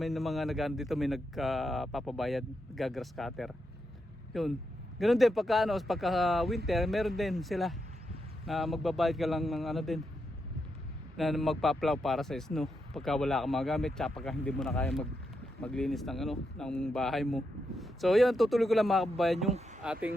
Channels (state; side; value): normal; both; correlation 0.84